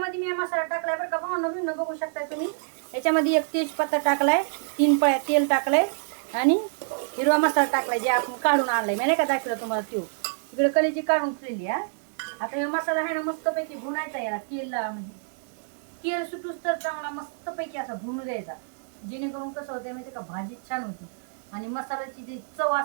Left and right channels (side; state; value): left; silent; digital silence